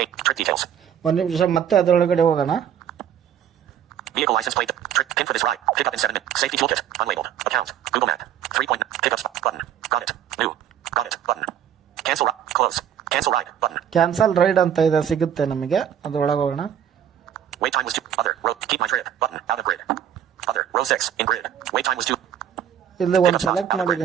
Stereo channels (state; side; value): quieter; left; 9.5 dB